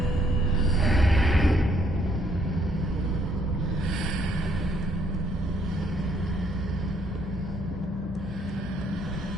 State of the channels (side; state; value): both; normal; correlation 0.68